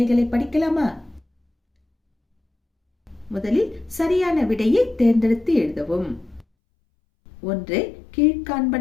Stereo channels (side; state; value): right; drops out; at 6.5 s